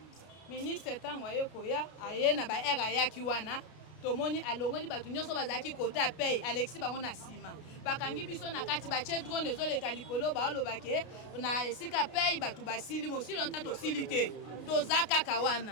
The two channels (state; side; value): late; right; 33 ms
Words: ministre ntango aye koya aye na baere ayaki wana tomoni alongoli bato nyonso bazalaki kote apei Alexis bango na nsima bakangi biso na kati batie drone ezoleka likolo baolobake na esika pei bato basili mosili longtemps tosili te toza kaka